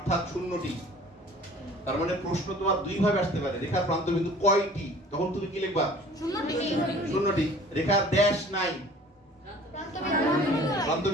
শূন্যটি। তার মানে প্রশ্ন তোমার দুই ভাবে আসতে পারে, রেখার প্রান্ত বিন্দু কয়টি? তখন তুমি কি লিখবা? শূন্যটি। রেখার ড্যাশ নাই, প্রান্ত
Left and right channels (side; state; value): both; normal; correlation 0.49